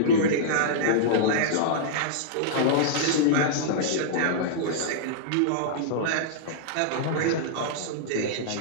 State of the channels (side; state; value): both; different; correlation -0.02